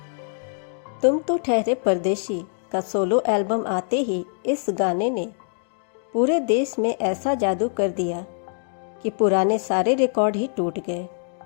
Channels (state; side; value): silent; right; 63 dB below the other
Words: तुम तो ठहरे परदेसी का सोलो एल्बम आते ही इस गाने ने पूरे देश में ऐसा जादू कर दिया कि पुराने सारे रिकॉर्ड ही टूट गए।